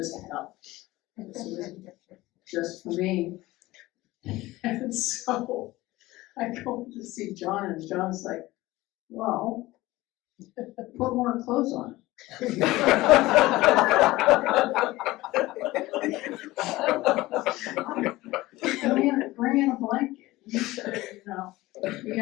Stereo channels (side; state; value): right; quieter; 18.6 dB